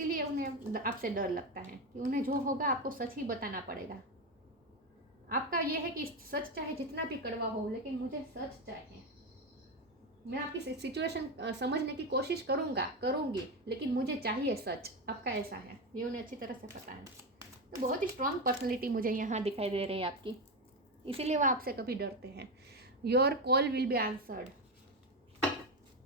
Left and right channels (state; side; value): normal; both; correlation 0.13